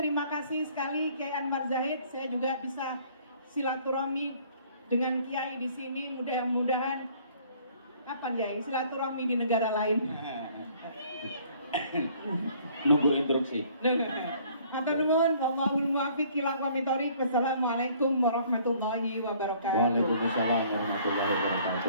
kasih sekali Kiai Anwar Zahid. Saya juga bisa silaturahmi dengan Kiai di sini, mudah-mudahan apa Kiai, silaturahmi di negara lain. Nunggu instruksi. Matur nuwun, wallahul muwaffiq ila aqwamit thoriq. Wassalamualaikum warahmatullahi wabarakatuh. Waalaikumsalam warahmatullahi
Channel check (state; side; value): inverted; both; correlation -0.58